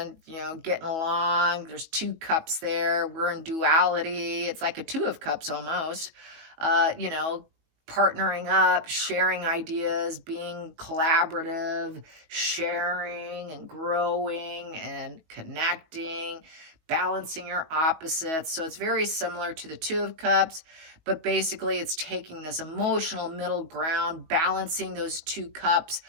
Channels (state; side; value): late; left; 19 ms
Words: you know, getting along. There's two cups there. We're in duality. It's like a Two of Cups almost, you know, partnering up, sharing ideas, being collaborative, sharing and growing and connecting, balancing your opposites. So it's very similar to the Two of Cups, but basically it's taking this emotional middle ground, balancing those two cups,